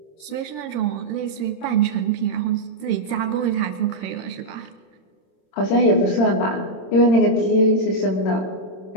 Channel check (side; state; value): right; late; 26 ms